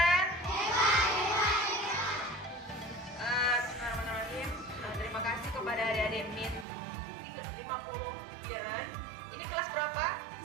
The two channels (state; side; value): drops out; left; at 6.7 s